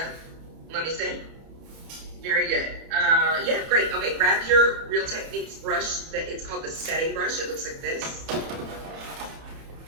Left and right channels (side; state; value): left; late; 30 ms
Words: Let me see. Very good. Yeah, great. Okay, grab your Real Techniques brush. It's called the setting brush. It looks like this.